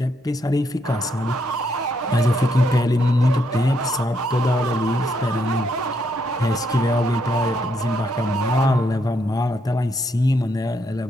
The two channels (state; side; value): normal; both; correlation 0.75